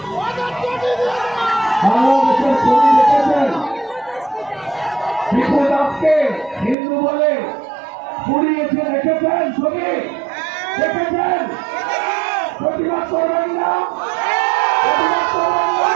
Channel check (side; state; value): left; drops out; at 6.8 s